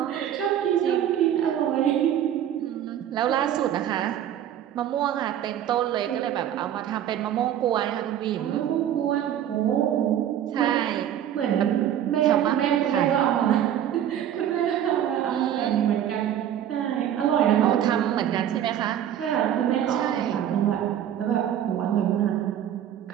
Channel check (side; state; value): left; quieter; 10.5 dB